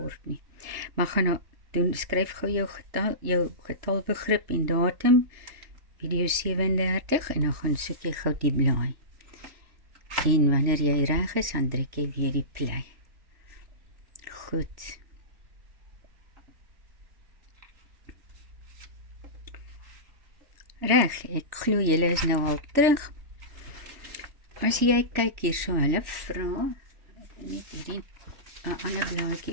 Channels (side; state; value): left; late; 3.4 ms